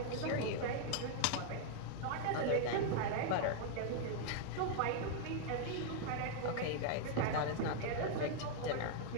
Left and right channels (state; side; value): different; both; correlation 0.00